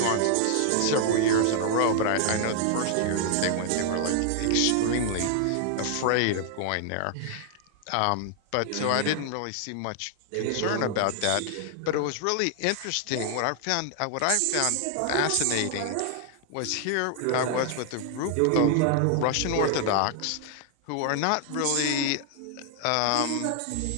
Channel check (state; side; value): different; both; correlation 0.00